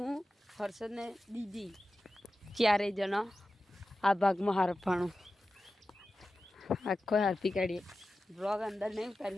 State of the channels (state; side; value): normal; both; correlation 0.94